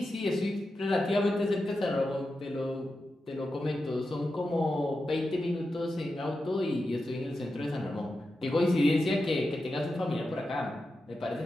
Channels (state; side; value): normal; both; correlation 0.90